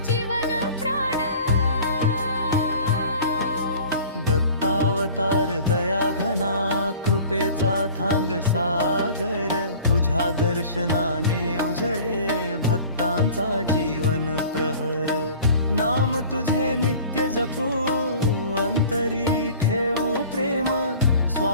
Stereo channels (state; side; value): inverted; both; correlation -0.45